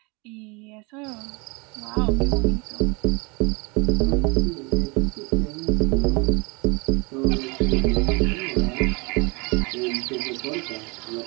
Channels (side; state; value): left; quieter; 29.1 dB